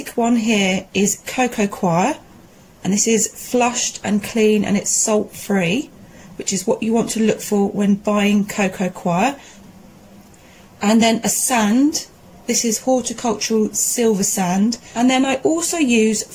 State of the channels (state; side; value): identical; both; correlation 1.00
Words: one here is cocoa coir, and this is flushed and clean and it's salt free, which is what you want to look for when buying cocoa coir. And then a sand, this is horticultural silver sand, and then I also use